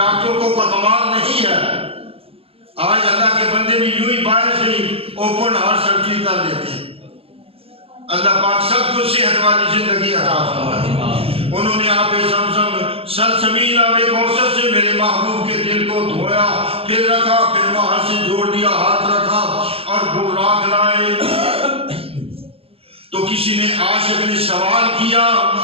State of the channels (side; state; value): left; late; 0.28 ms